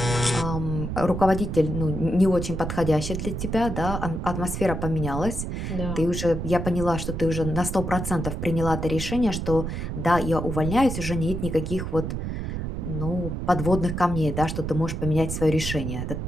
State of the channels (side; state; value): right; noise; rumble, 4 dB below the sound